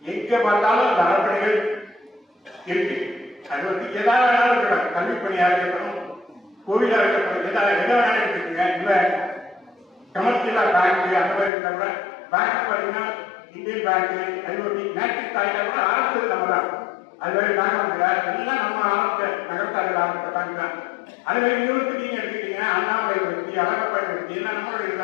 எங்க பார்த்தாலும் அந்த அர்ப்பணிகள் இருக்கு. அது எதாவது வேணாலும் இருக்கணும். கல்வி பணியா இருக்கணும், கோவிலா இருக்கணும், எதாவது எதை வேணாலும் இருக்குங்க. இல்ல கமர்ஷியலா பேங்க் அந்த மாதிரி இருந்தா கூட பேங்க் பாத்தீங்கன்னா Indian bank, IoT, national bank கூட அரசு நம்ம தான். அது மாதிரி எல்லாம் நம்ம ஆரம்பிச்ச நகரத்தார்கள் ஆரம்பிச்ச பேங்க் தான். அது மாதிரி யூனிவர்சிட்டி எடுத்துக்கிட்டீங்கன்னா அண்ணாமலை யூனிவர்சிட்டி, அழகப்பா யூனிவர்சிட்டி எல்லாம் நம்மளுடைய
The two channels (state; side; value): drops out; right; at 11.5 s